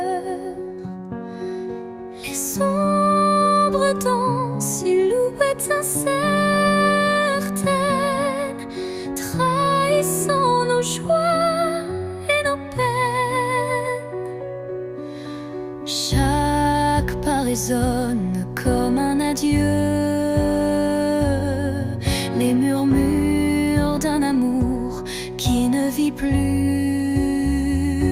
Les ombres dansent, silhouettes incertaines, trahissant nos joies et nos peines. Chaque pas résonne comme un adieu, les murmures d'un amour qui ne vit plus.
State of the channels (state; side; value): identical; both; correlation 1.00